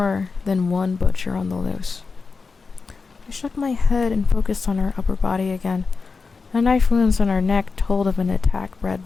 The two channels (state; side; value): quieter; right; 4.6 dB